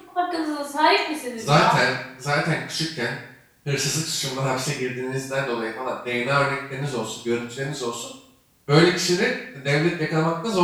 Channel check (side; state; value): both; identical; correlation 1.00